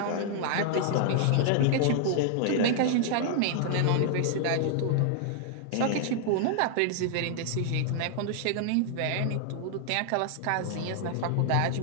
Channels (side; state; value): both; different; correlation -0.01